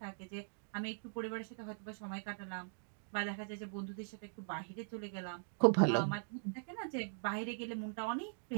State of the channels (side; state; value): left; silent; digital silence